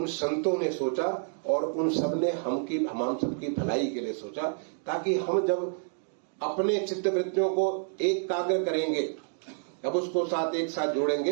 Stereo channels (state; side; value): silent; left; digital silence